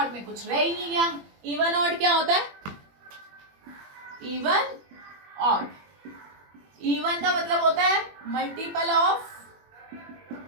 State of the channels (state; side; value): late; left; 21 ms